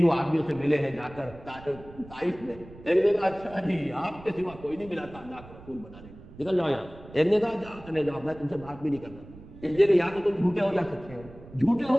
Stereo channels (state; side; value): noise; right; rumble, 19 dB below the sound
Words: آدمیوں سے ملے ہیں جا کر طائف میں، ایک نے کہا اچھا جی آپ کے سوا کوئی نہیں ملا تھا اللہ کے رسول بنانے، نکل جاؤ یہاں، ایک نے کہا جاؤ چلے جاؤ میں تم سے بات بھی نہیں کرنا، اس لیے کہ یا تو تم جھوٹے ہو یا سچے ہو، جھوٹے ہو